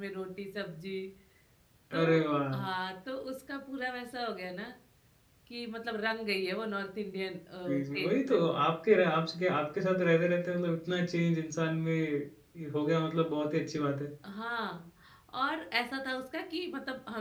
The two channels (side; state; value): both; identical; correlation 1.00